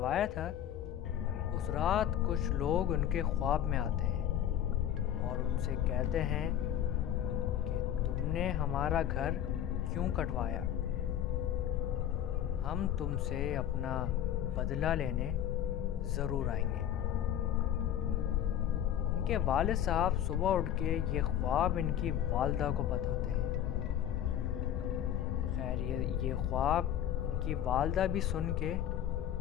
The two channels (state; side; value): quieter; right; 10.6 dB